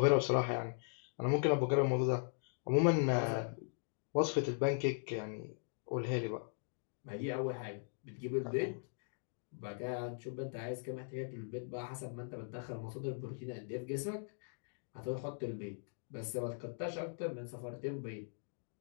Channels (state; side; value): silent; right; digital silence